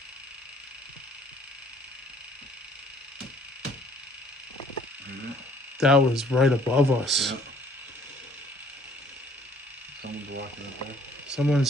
That was right above us. Yep. Someone's walking up there.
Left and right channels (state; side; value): normal; both; correlation 0.58